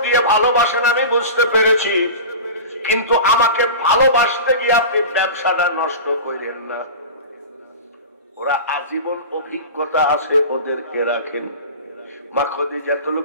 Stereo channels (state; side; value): inverted; both; correlation -0.31